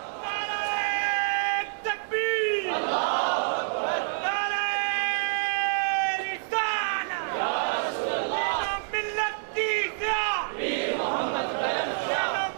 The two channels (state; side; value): silent; left; digital silence